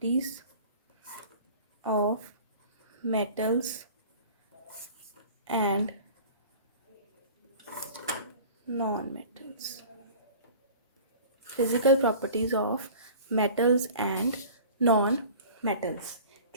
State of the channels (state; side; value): inverted; both; correlation -0.43